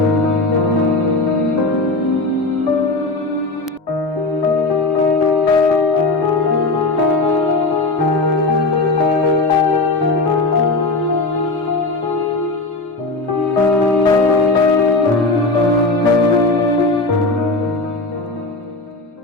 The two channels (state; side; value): quieter; right; 3.1 dB